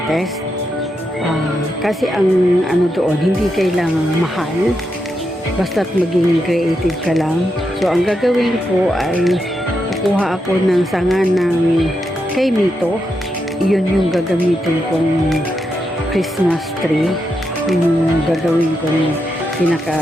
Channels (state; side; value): normal; both; correlation 0.84